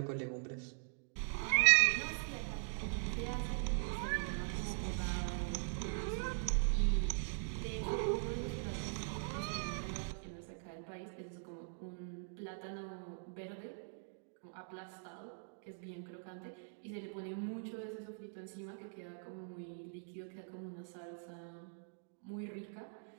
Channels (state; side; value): silent; left; digital silence